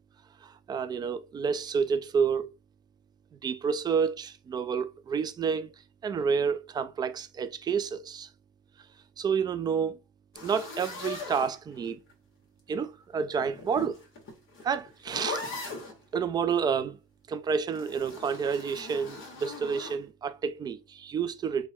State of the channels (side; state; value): left; quieter; 5.7 dB